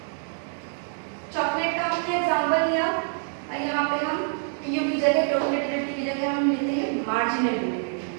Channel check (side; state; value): left; silent; 61 dB below the other